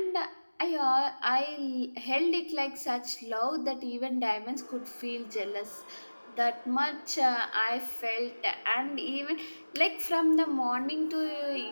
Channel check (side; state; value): both; inverted; correlation -1.00